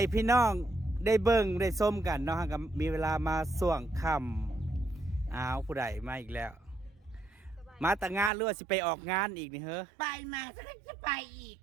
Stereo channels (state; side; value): drops out; left; at 8.3 s